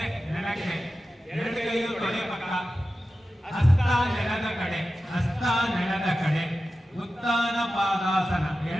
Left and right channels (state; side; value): normal; both; correlation 0.93